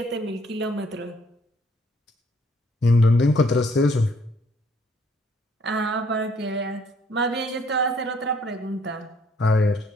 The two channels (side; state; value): both; normal; correlation 0.64